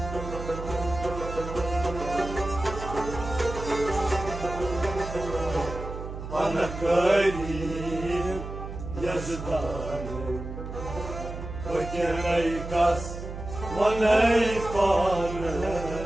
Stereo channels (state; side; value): noise; right; hum, 9 dB below the sound